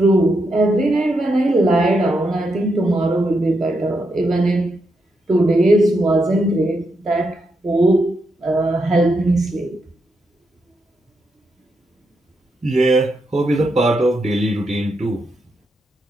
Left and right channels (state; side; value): normal; both; correlation 0.82